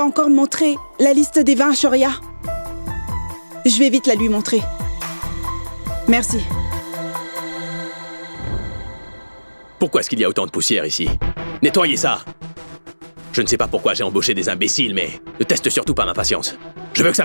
encore montré la liste des vins à Shoria. Je vais vite la lui montrer. Merci. Pourquoi est-ce qu'il y a autant de poussière ici? Nettoyez ça! Je ne sais pas pourquoi j'ai embauché des imbéciles, mais ne teste surtout pas ma patience. Je veux que ça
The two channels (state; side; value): inverted; both; correlation -1.00